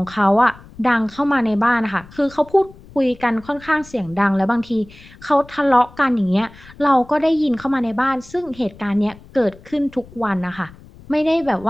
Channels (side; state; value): left; noise; rumble, 22 dB below the sound